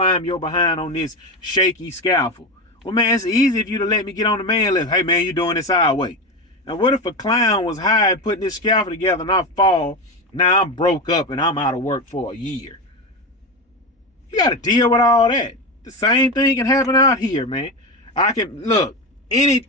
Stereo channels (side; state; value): both; normal; correlation 0.18